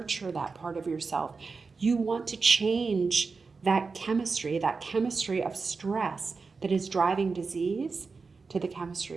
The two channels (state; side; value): quieter; left; 4.5 dB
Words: that part of yourself. You want to change that chemistry of stress that is driving disease to the